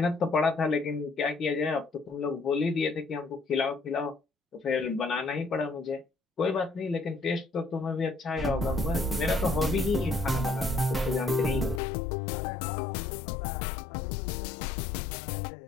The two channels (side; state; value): right; drops out; at 11.8 s